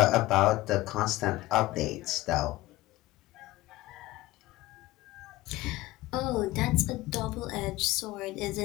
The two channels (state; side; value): quieter; right; 17.9 dB